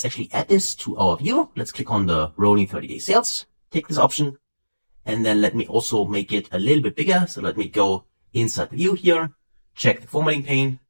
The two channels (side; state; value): both; inverted; correlation -1.00